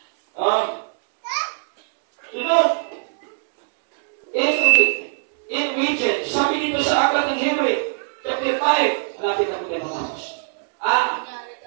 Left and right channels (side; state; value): left; silent; digital silence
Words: Sunod, in region, sabi dito sa aklat ng Hebrew, chapter 5, malapit na po tayo matapos.